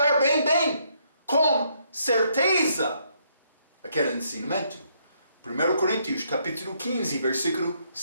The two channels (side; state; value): both; inverted; correlation -0.72